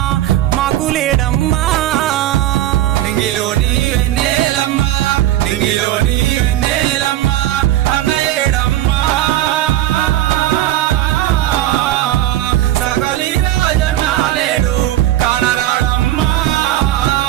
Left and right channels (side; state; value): left; quieter; 13.8 dB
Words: మాకు లేడమ్మా నింగిలోని వెన్నెలమ్మా నింగిలోని వెన్నెలమ్మా అన్న ఏడమ్మా సకలి రాజన్న లేడు కానరాడమ్మా